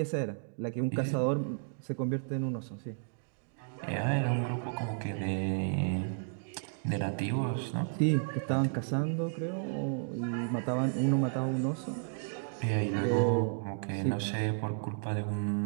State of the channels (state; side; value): silent; left; digital silence